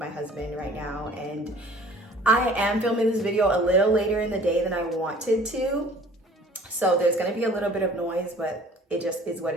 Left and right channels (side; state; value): both; normal; correlation 0.50